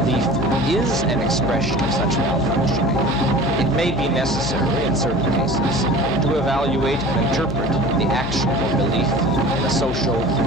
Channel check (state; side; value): noise; left; hum, 11 dB below the sound